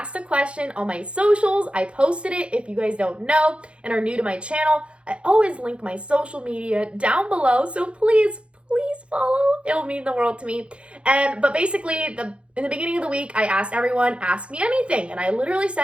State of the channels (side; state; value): left; late; 0.059 ms